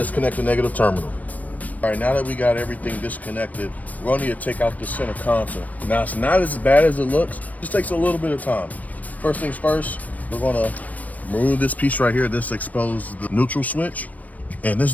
the negative terminal. All right, now that we got everything disconnected, we're going to need to take out the center console. Now it's not as bad as it looks, it just takes a little bit of time. First things first, we're going to remove this piece right here. This exposes the neutral switch. And this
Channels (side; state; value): right; late; 0.073 ms